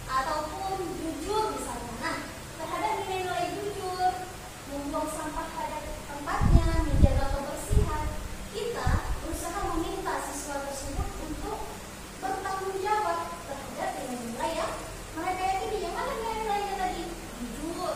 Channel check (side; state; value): both; identical; correlation 1.00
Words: ataupun jujur misalnya. Nah, terhadap nilai-nilai jujur, membuang sampah pada tempatnya, menjaga kebersihan, kita berusaha meminta siswa tersebut untuk bertanggung jawab terhadap nilai-nilai yang mereka yakini. Yang mana nilai-nilainya tadi? Jujur